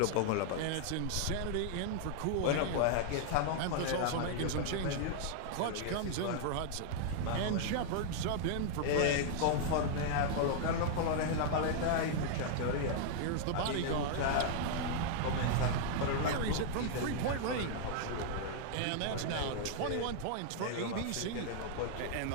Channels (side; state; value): both; different; correlation 0.00